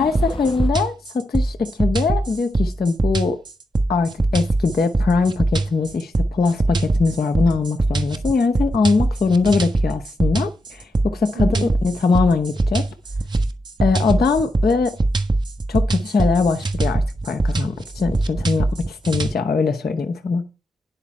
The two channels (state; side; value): normal; both; correlation 0.85